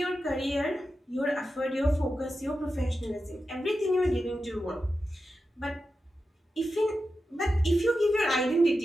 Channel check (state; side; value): normal; both; correlation 0.91